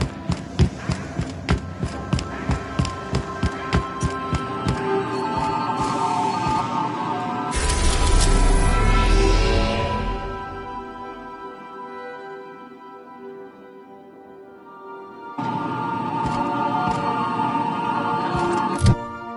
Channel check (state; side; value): identical; both; correlation 1.00